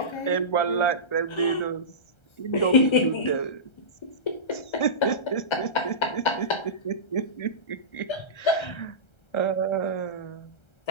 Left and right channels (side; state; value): right; late; 1.3 ms